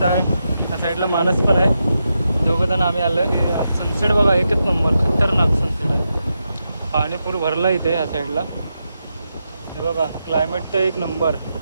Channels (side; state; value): both; inverted; correlation -0.86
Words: आहे या साईडला मानस पण आहे. दोघंजण आम्ही आलो आहे. सनसेट बघा एकच नंबर, खतरनाक सनसेट आहे. पाणी पूर भरला इथे या साईडला. हे बघा क्लायमेट तर एक नंबर.